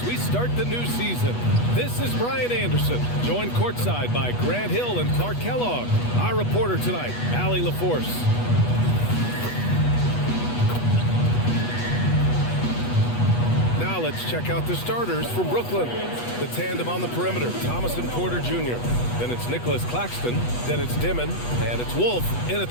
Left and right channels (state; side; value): late; right; 8.2 ms